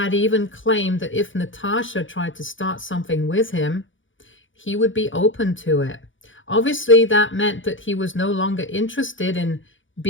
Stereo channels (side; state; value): right; late; 0.56 ms